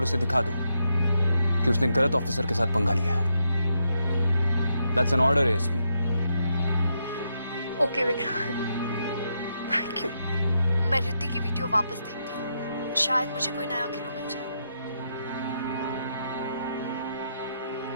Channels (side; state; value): both; inverted; correlation -0.81